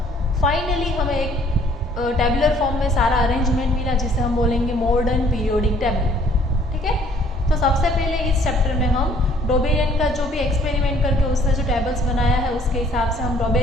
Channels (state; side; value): normal; both; correlation 0.60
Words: फाइनली हमें एक टैबुलर फॉर्म में सारा अरेंजमेंट मिला, जिसे हम बोलेंगे मॉडर्न पीरियोडिक टेबल। ठीक है, तो सबसे पहले इस चैप्टर में हम डोबेरियन का जो भी एक्सपेरिमेंट करके उसने जो टेबल्स बनाया है उसके हिसाब से हम